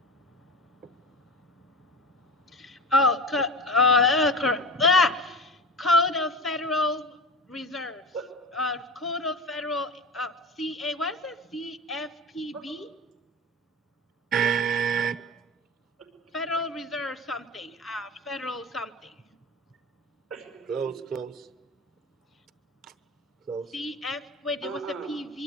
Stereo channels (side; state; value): both; normal; correlation 0.30